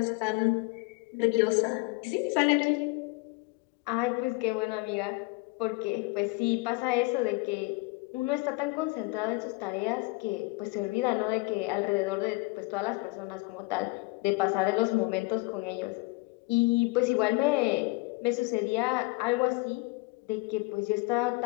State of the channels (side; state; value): right; quieter; 24.7 dB